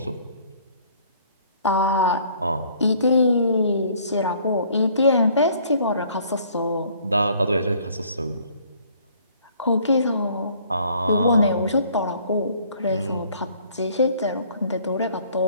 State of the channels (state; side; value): inverted; both; correlation -0.58